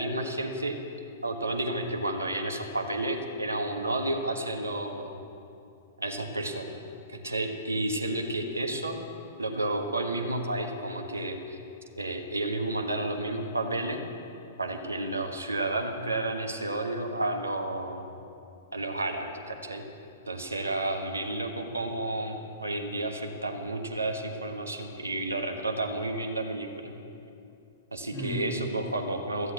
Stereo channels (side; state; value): both; inverted; correlation -0.61